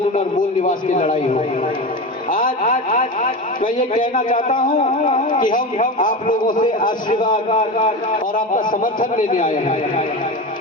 और मूल निवास की लड़ाई हो। आज मैं ये कहना चाहता हूँ कि हम आप लोगों से आशीर्वाद और आपका समर्थन लेने आए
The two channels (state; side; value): normal; both; correlation 0.24